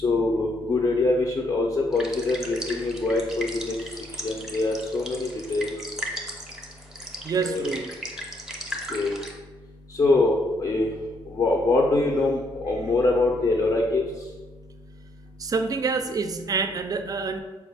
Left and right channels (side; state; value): both; normal; correlation 0.71